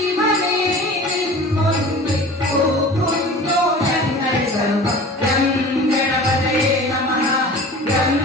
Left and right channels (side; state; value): both; normal; correlation 0.40